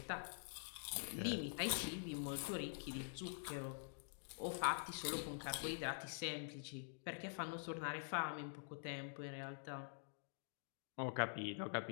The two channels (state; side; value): silent; right; digital silence